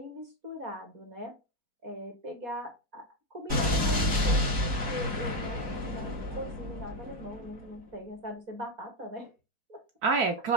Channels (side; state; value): left; late; 3.9 ms